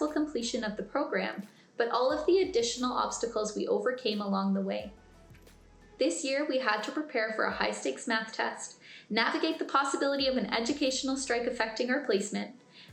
completion of the program, but all of the additional obstacles we overcame along the way. This year, we had to prepare for a high-stakes math test, navigate the possibility of an educational strike affecting our placement,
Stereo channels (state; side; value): identical; both; correlation 1.00